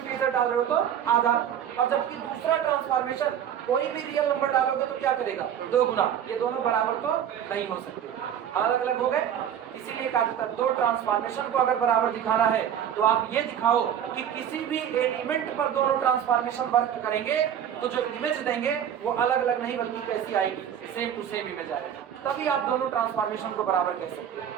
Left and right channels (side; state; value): left; quieter; 9.4 dB